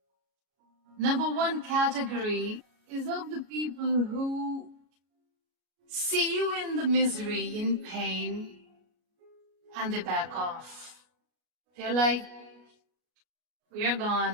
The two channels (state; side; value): late; left; 33 ms